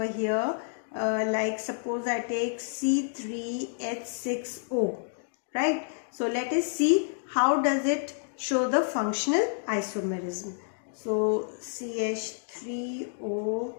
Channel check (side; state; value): right; silent; digital silence